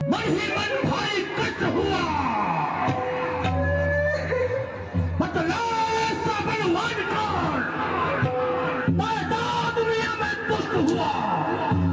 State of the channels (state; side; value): identical; both; correlation 1.00